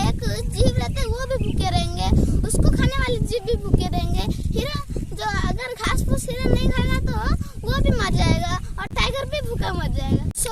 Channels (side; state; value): both; identical; correlation 1.00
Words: एक जीव रहते हैं वो भी भूखे रहेंगे, उसको खाने वाले जीव भी भूखे रहेंगे। हिरन जो अगर घास फूस हिरन नहीं खाएगा तो वो भी मर जाएगा, और टाइगर भी भूखा मर जाएगा।